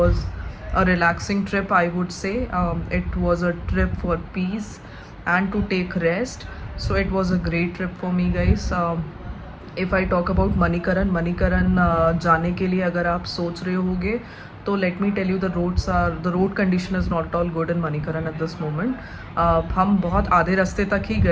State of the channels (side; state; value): both; identical; correlation 1.00